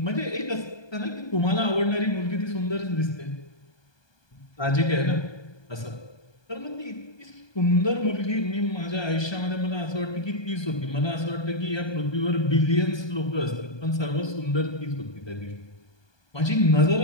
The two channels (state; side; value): late; right; 1.2 ms